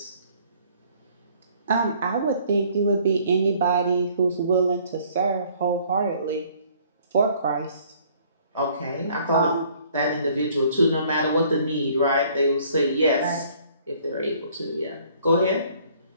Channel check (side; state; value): both; inverted; correlation -0.59